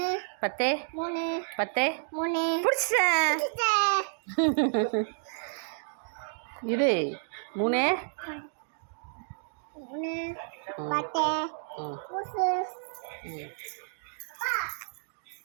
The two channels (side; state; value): left; silent; digital silence